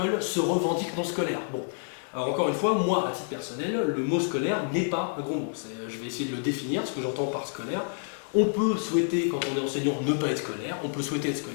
se revendiquent non scolaires. Bon, alors encore une fois, moi, à titre personnel, le mot scolaire n'est pas un gros mot. Je vais essayer de le définir, ce que j'entends par scolaire. On peut souhaiter, quand on est enseignant, ne pas être scolaire, on peut souhaiter être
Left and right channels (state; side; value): silent; right; 58 dB below the other